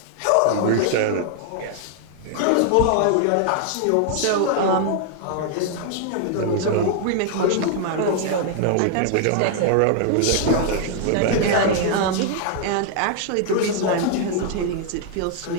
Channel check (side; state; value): both; different; correlation 0.00